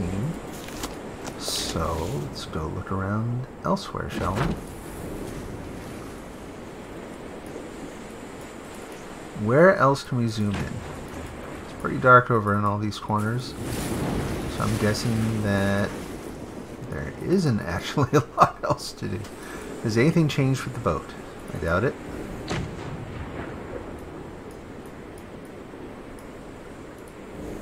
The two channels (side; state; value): both; identical; correlation 1.00